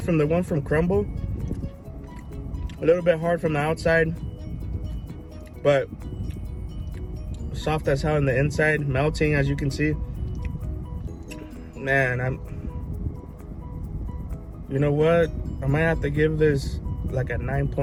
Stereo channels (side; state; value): both; identical; correlation 1.00